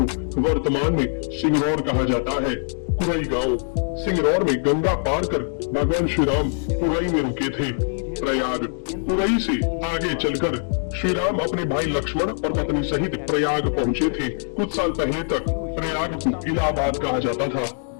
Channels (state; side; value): silent; right; digital silence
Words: वर्तमान में सिंगरौर कहा जाता है। कुरई गांव, सिंगरौर में गंगा पार कर भगवान श्री राम कुरई में रुके थे। प्रयाग, कुरई से आगे चलकर श्री राम अपने भाई लक्ष्मण और पत्नी सहित प्रयाग पहुँचे थे। कुछ साल पहले तक प्रयाग को इलाहाबाद कहा जाता था।